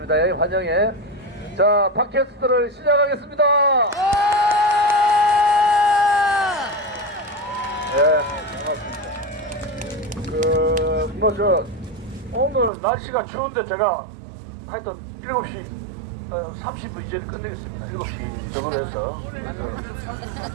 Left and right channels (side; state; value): left; drops out; at 12.7 s